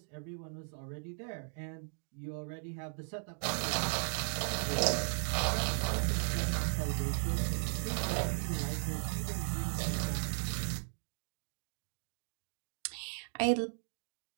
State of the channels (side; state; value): left; silent; digital silence